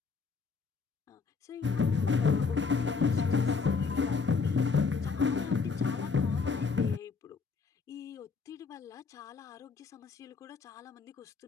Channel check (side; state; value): right; quieter; 4.9 dB